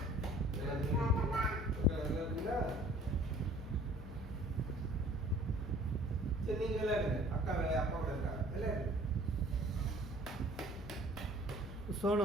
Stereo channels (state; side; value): normal; both; correlation 0.52